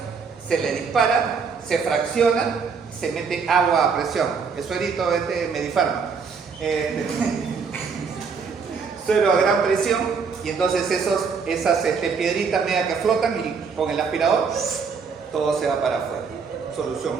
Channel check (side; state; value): left; quieter; 5.5 dB